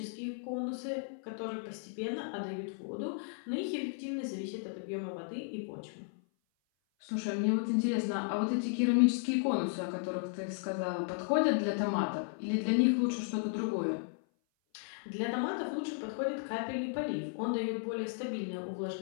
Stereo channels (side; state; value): right; silent; 55 dB below the other